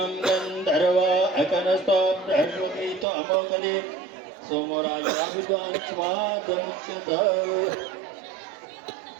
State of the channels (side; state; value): left; drops out; at 3.1 s